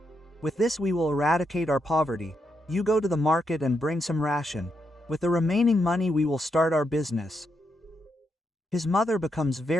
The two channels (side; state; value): both; normal; correlation 0.81